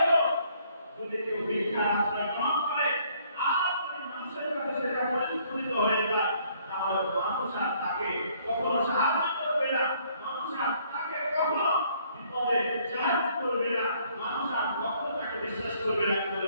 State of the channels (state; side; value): inverted; both; correlation -0.64